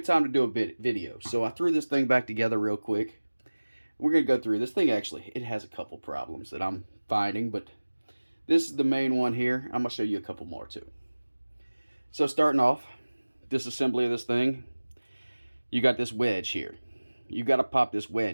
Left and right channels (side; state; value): both; inverted; correlation -1.00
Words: time to do a video. So I threw this thing back together real quick. We're going to go through this thing. Actually, it has a couple problems that I'm finding, but this is the main one here. I'm going to show you a couple more too. So starting off, disassembly of this thing, you got this wedge here. You got to pop this